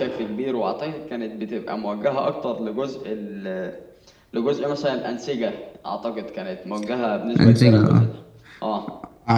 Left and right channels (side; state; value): both; identical; correlation 1.00